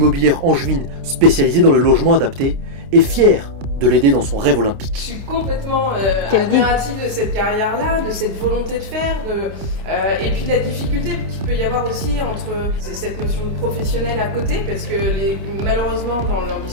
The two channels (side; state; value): left; late; 29 ms